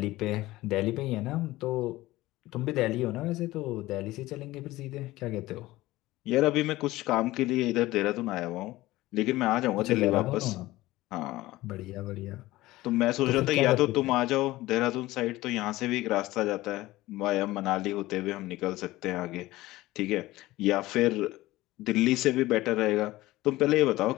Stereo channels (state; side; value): quieter; right; 17.8 dB